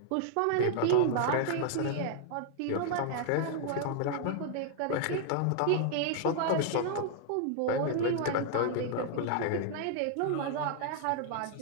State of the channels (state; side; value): different; both; correlation 0.00